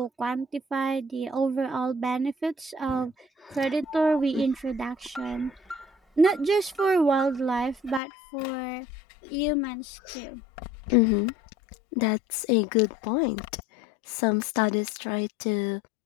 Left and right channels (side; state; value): right; drops out; at 8.0 s